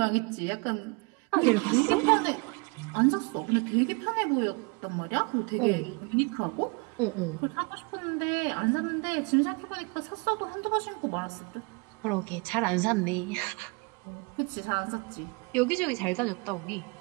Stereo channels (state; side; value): quieter; left; 31.1 dB